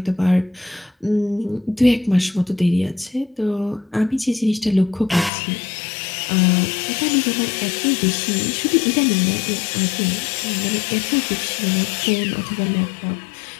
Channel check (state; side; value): drops out; right; at 5.3 s